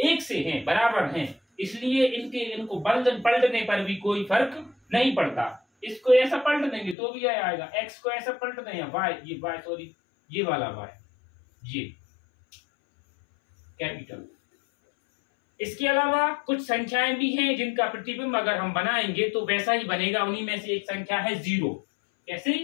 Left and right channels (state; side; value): drops out; right; at 7.0 s